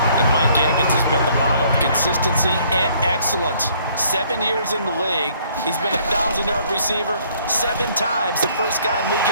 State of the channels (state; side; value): inverted; both; correlation -0.63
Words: And Mike Evans has been the model of consistency and excellence. 7 years in the league. He's been a 1,000-yard receiver 7 times, the first guy in league